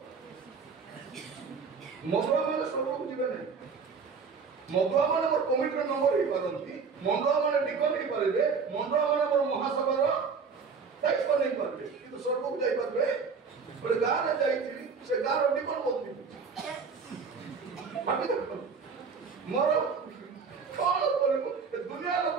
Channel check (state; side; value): quieter; left; 5.4 dB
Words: ମଦୁଆ ମାନେ ସ୍ୱର୍ଗକୁ ଯିବେ ନାହିଁ। ମଦୁଆ ମାନେ ମୋର କମିଟିର ନମ୍ବର ହେଇପାରନ୍ତି, ମଦୁଆ ମାନେ ଡିକନ ହେଇପାରିବେ, ମଦୁଆ ମାନେ ମୋର ମହାସଭାର ଦାୟିତ୍ୱ ନେଇପାରିବେ, କିନ୍ତୁ ସ୍ୱର୍ଗକୁ ଯାଇପାରିବେ? ଗୋଟେ ଗାଁରେ ଯାଇଥିଲି, ସେ ଗାଁର ଡିକନ ମଦ ପିଉଛି। ଭାବି ଦେଖନ୍ତୁ ମୋର କଣ କରିବୁ? ଦୁନିଆ ଲୋକ